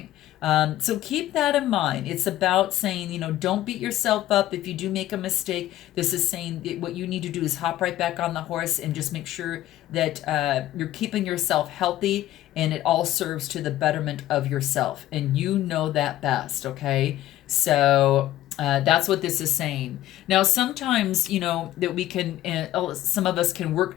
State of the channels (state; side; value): quieter; right; 14.2 dB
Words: So keep that in mind. It's about saying, don't beat yourself up if you do make a mistake. This is saying what you need to do is hop right back on the horse and just make sure that you're keeping yourself healthy, and it all serves to the betterment of yourself. And you know that best, okay? So that's what this is saying. Now, sometimes, that we can, some of us can work